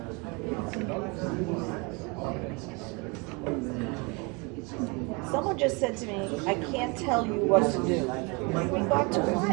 Someone just said to me, I can't tell you what to do. In regard to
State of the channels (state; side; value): quieter; left; 29.7 dB